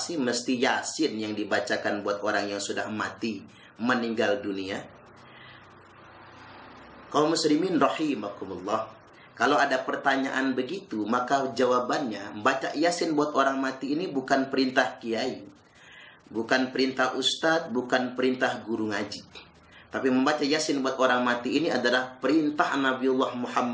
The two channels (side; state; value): both; identical; correlation 1.00